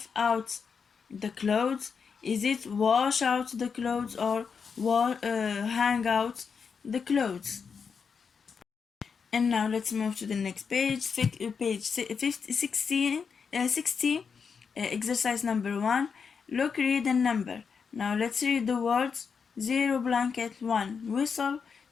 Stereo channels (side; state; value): right; quieter; 6.0 dB